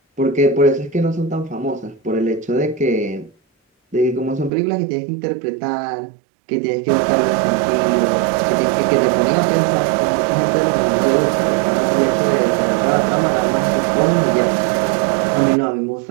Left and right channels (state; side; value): drops out; left; at 4.5 s